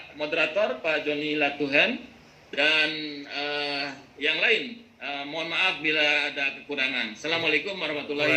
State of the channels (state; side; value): identical; both; correlation 1.00